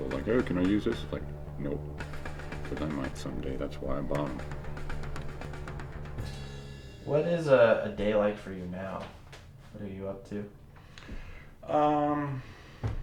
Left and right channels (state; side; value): identical; both; correlation 1.00